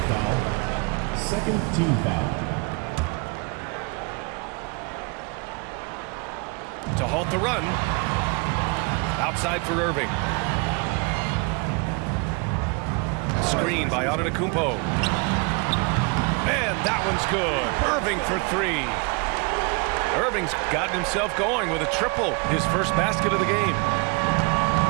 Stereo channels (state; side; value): quieter; left; 31.2 dB